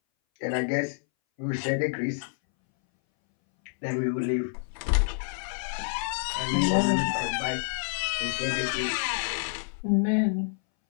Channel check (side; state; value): right; silent; 59 dB below the other